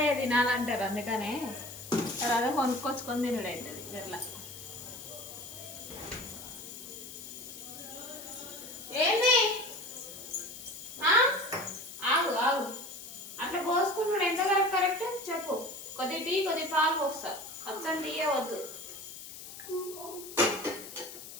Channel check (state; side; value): noise; left; hiss, 12 dB below the sound